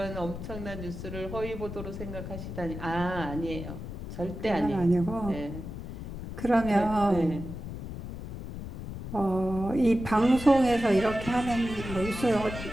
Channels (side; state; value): left; noise; rumble, 8 dB below the sound